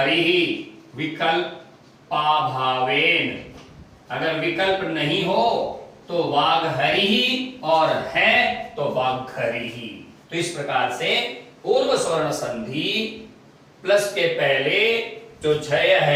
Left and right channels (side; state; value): both; identical; correlation 1.00